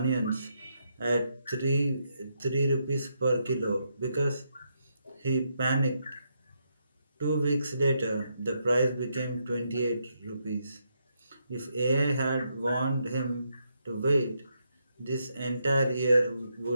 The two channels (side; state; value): both; inverted; correlation -0.80